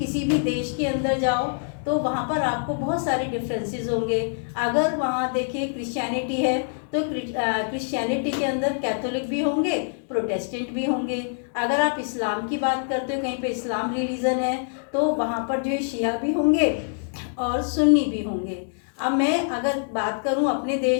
भी देश के अंदर जाओ तो वहाँ पर आपको बहुत सारे डिफरेंसेस होंगे। अगर वहाँ देखिए क्रिश्चियनिटी है तो क्रिश्चियनिटी के अंदर कैथोलिक भी होंगे, प्रोटेस्टेंट भी होंगे। अगर आप इस्लाम की बात करते हो, कहीं पे इस्लाम रिलीजन है तो वहाँ पर जो है शिया भी होंगे और सुन्नी भी होंगे। अब मैं अगर बात करूं अपने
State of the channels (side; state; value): right; silent; digital silence